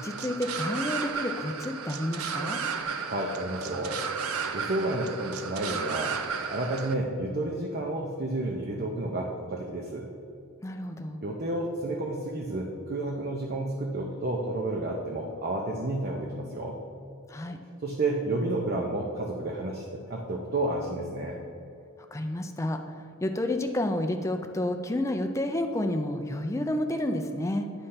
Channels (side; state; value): both; normal; correlation 0.46